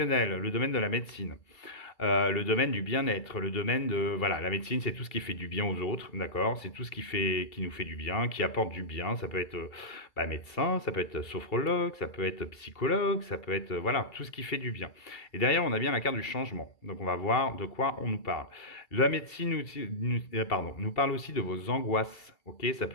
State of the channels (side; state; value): right; late; 2.3 ms